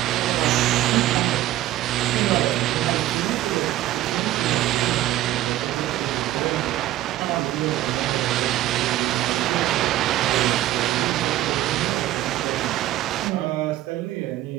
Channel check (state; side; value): quieter; left; 14.4 dB